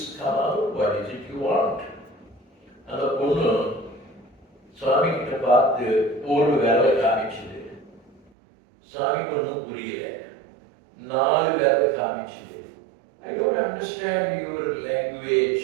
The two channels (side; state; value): left; drops out; at 8.3 s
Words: come out. What is it you want? அந்த பொண்ணு சுவாமி கிட்ட பார்த்து ஒரு வேலை காமிச்சது. சுவாமிக்கு ஒன்றும் புரியல. 4 வேலை காமிச்சது. I don't understand your